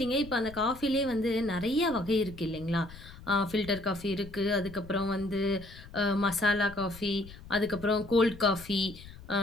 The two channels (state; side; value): noise; left; rumble, 17 dB below the sound